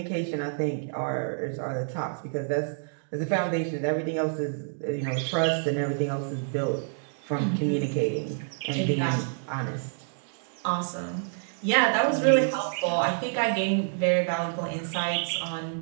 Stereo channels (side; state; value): left; silent; digital silence